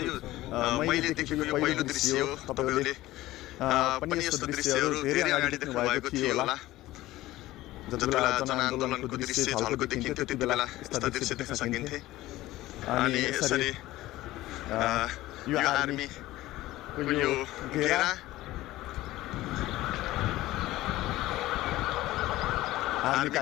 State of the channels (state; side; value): quieter; right; 16.8 dB